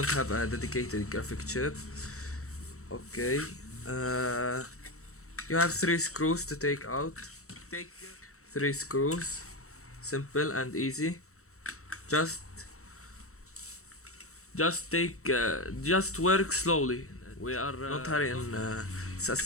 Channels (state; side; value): late; right; 0.64 ms